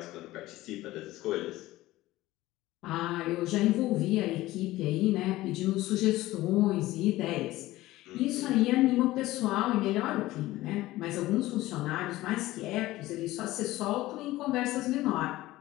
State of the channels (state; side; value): quieter; right; 17.2 dB